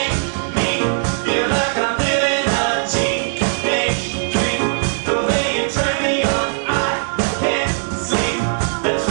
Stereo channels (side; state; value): left; silent; digital silence